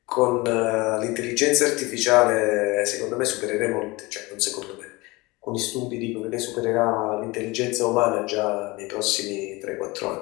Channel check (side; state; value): right; quieter; 23.0 dB